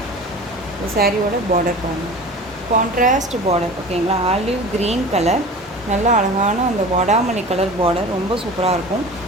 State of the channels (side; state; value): both; normal; correlation 0.37